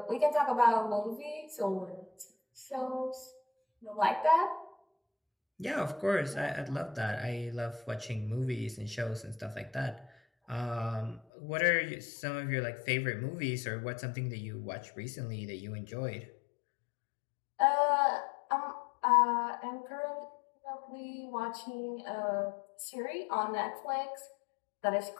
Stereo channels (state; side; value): drops out; right; at 11.2 s